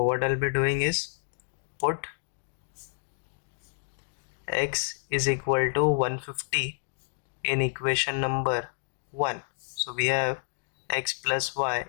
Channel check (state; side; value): silent; right; digital silence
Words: what I'll be doing is put x is equal to 150 in equation number 1. So we have x plus y